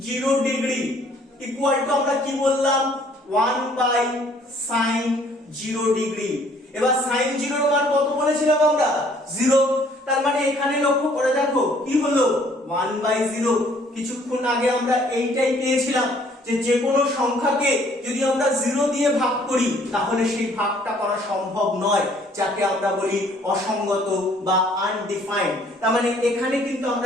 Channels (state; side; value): normal; both; correlation 0.60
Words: 0 ডিগ্রি ইকুয়াল টু আমরা কি বললাম? 1/sin 0 degree. এবার sin 0 এর মান কত বলেছিলাম আমরা? 0। তার মানে এখানে লক্ষ্য করে দেখো কি হলো? 1/0। কিছুক্ষণ আগে আমরা এইটাই পেয়েছিলাম যে যে কোনো সংখ্যাকে যদি আমরা 0 দিয়ে ভাগ করি তাহলে সেই ভাগটা করা সম্ভব নয়, যাকে আমরা বলি অসঙ্গত বা আনডিফাইন্ড। তার মানে এখানে কিন্তু